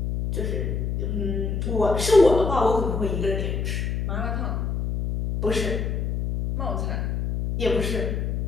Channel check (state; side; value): noise; left; hum, 1 dB below the sound